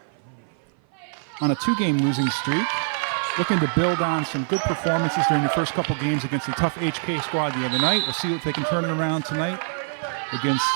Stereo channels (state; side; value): silent; left; 56 dB below the other